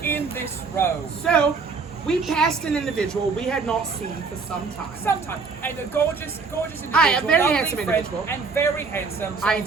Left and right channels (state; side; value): quieter; left; 4.7 dB